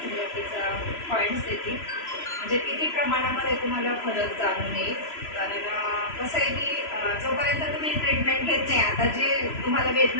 पॉईंट्स देतील, म्हणजे किती प्रमाणामध्ये तुम्हाला फरक जाणून येईल. कारण कसं आहे की जोपर्यंत तुम्ही ट्रीटमेंट घेत नाही, आता जे तुम्हाला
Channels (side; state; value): right; late; 3.0 ms